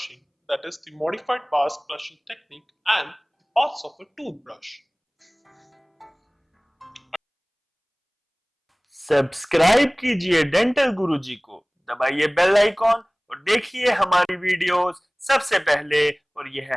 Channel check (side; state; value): both; identical; correlation 1.00